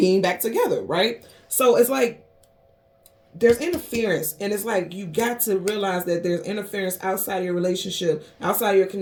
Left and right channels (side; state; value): both; identical; correlation 1.00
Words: back together, right? So it's like, there's interference, and it's like you got to realize that there's interference outside of your relationship, outside of your